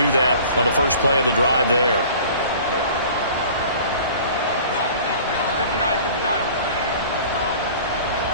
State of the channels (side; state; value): both; inverted; correlation -0.45